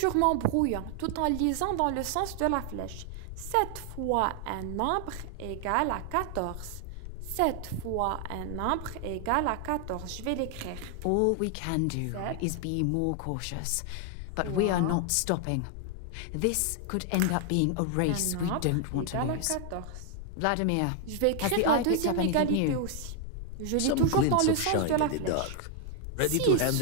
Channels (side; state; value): both; different; correlation 0.00